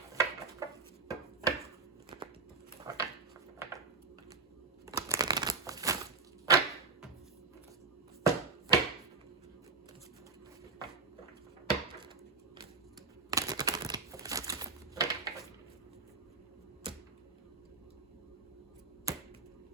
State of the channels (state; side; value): quieter; left; 4.5 dB